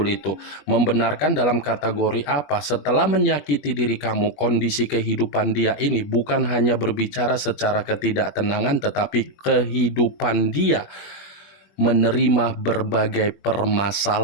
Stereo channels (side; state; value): right; late; 21 ms